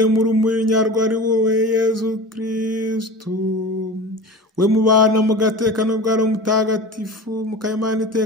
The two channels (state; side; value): normal; both; correlation 0.34